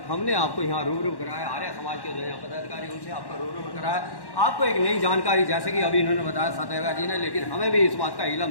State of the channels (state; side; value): late; right; 1.1 ms